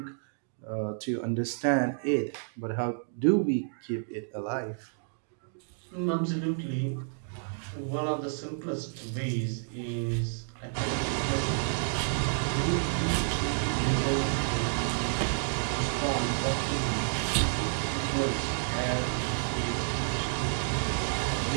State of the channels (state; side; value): silent; left; digital silence